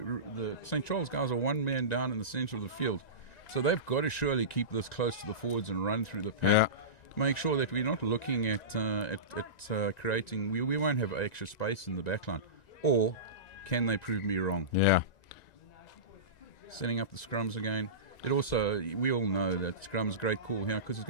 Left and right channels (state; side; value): late; right; 1.9 ms